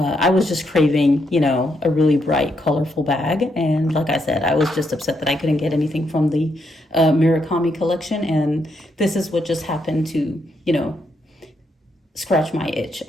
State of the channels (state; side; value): normal; both; correlation 0.78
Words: was just craving, a really bright, colorful bag. And like I said, I was just upset that I couldn't get anything from the Murakami collection. And this is what just happened to, scratch my itch